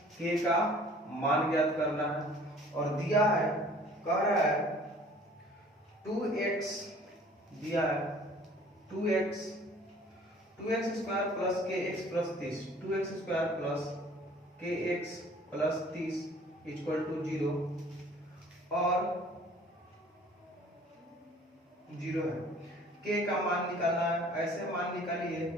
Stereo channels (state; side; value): normal; both; correlation 0.52